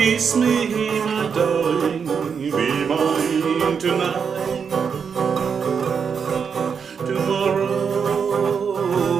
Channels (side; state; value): left; quieter; 6.5 dB